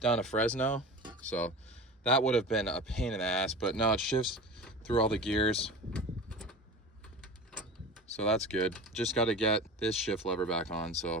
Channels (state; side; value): normal; both; correlation 0.32